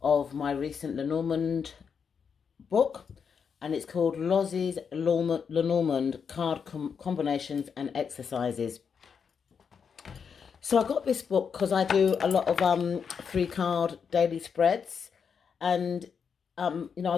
of my recent Lenormand book, and it's called Lozzy's Lenormand Card Combinations and Exercises. So I got this book because I do a lot of 3-card daily spreads, and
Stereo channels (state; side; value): quieter; right; 6.5 dB